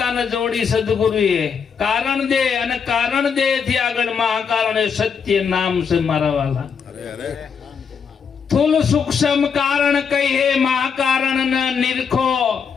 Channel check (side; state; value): right; quieter; 6.4 dB